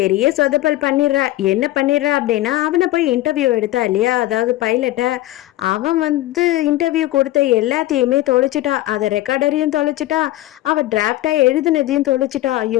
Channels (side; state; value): right; quieter; 16.1 dB